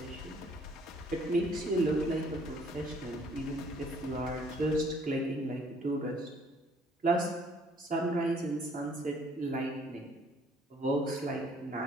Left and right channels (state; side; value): normal; both; correlation 0.61